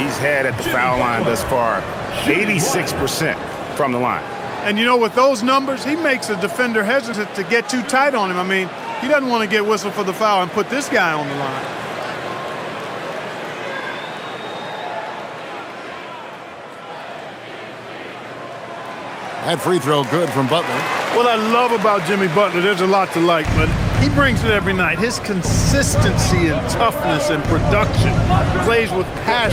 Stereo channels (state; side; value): identical; both; correlation 1.00